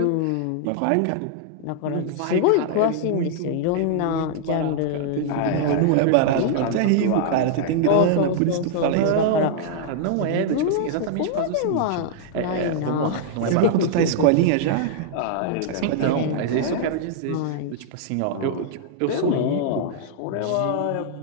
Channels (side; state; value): both; different; correlation -0.01